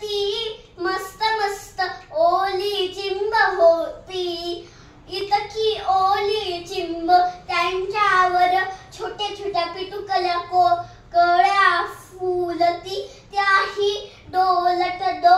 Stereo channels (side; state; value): both; identical; correlation 1.00